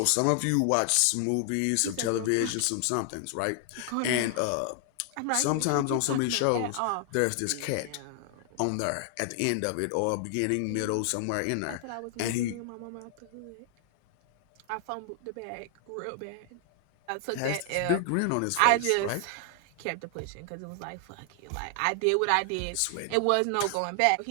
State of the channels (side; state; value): both; different; correlation 0.00